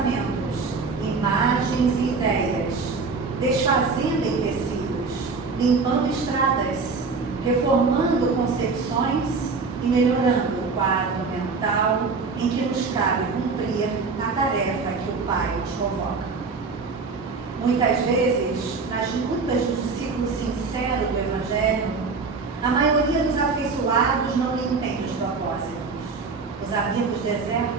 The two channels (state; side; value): quieter; left; 4.5 dB